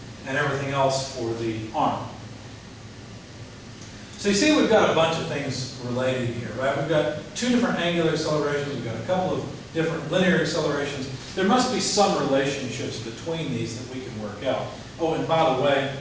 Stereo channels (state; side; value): identical; both; correlation 1.00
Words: and everything else for the arm. So you see we've got a bunch of things related here, right? We've got 2 different angular accelerations, we've got a couple of different linear accelerations, there must be some relationships between these that we can work out. Oh, and by the way,